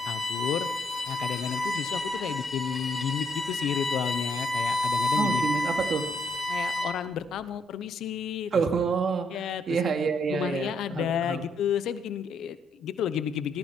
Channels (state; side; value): normal; both; correlation 0.73